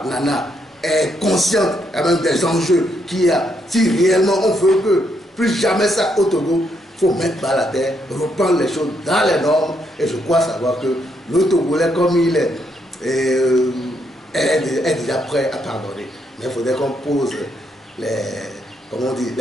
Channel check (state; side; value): normal; both; correlation 0.76